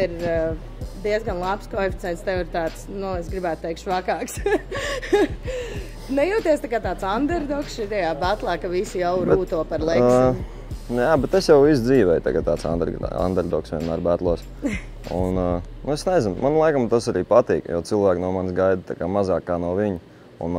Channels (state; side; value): identical; both; correlation 1.00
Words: ir diezgan labs koeficients, tev ir tāds, es gribētu teikt, švakāks. Nejūties tā kā tāds underdogs šajā batlā, ka visi jau rūto par Leksiņu? Jā, bet es jau visu dzīvēju tagad tāds underdogs vienmēr batlos. Un es nezinu, man laikam tas arī patīk, jo cilvēki no manis gaida tā kā mazāk kā no viņa. Un